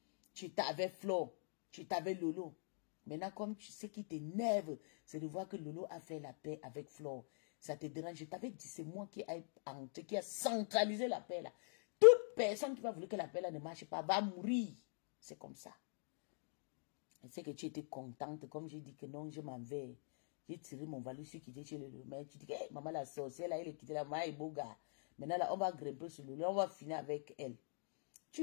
Tu t'avais Flo. Tu t'avais Lolo. Maintenant, comme tu sais qui t'énerve, c'est de voir que Lolo a fait la paix avec Flo. Ça te dérange. Je t'avais dit, c'est moi qui a centralisé la paix là. Toute personne qui va vouloir que la paix là ne marche pas va mourir. C'est comme ça. Je sais que tu étais contente. Comme j'ai dit que non, je m'en vais. J'ai tiré mon valise, je suis quitté chez le maire. Tu dis que hey, maman la sorcière, là, elle est quittée là, maman est beau gars. Maintenant, là, on va grimper sur le lit, on va finir avec elle.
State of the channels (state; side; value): silent; right; digital silence